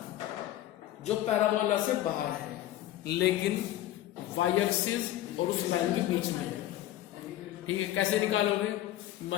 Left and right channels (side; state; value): right; quieter; 13.8 dB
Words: जो पैराबोला से बाहर है लेकिन वाई एक्सिस और उस लाइन के बीच में है, ठीक है। कैसे निकालोगे?